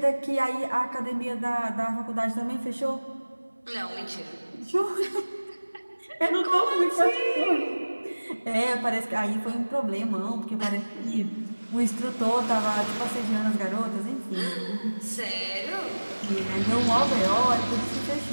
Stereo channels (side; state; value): both; inverted; correlation -1.00